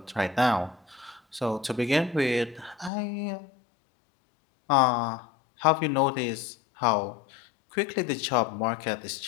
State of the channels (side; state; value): right; drops out; at 2.9 s